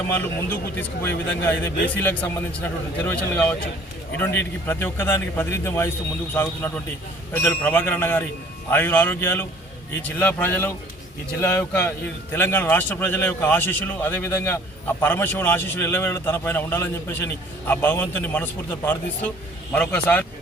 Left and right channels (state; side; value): normal; both; correlation 0.54